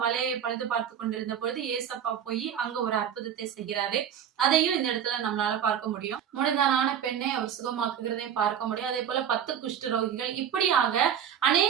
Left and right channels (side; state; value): left; quieter; 8.9 dB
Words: வலையை பழுது பார்த்து கொண்டிருந்த பொழுது ஏசப்பா போய் அங்க ஒரு அற்புதத்தை செய்கிறாரு. அதையும் இந்த இடத்துல நம்மளால பார்க்க முடியும். முடந்தான பெண்ணை அவர் சுகமாக்குகிறதையும் பார்க்க முடியும். அதே போல 10 குஷ்டரோகிகள், இப்படியாக